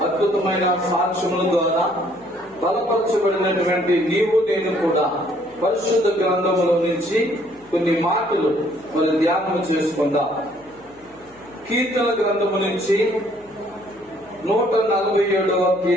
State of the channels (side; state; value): left; noise; hum, 28 dB below the sound